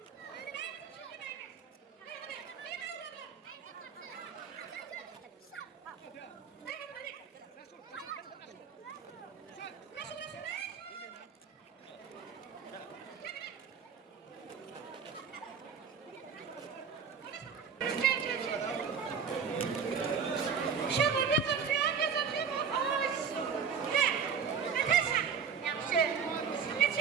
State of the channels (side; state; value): left; quieter; 6.6 dB